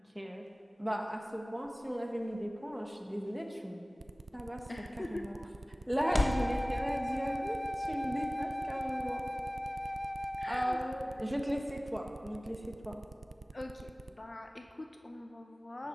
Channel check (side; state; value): both; normal; correlation 0.98